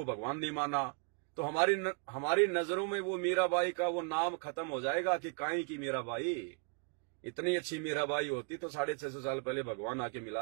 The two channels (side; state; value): left; quieter; 35.3 dB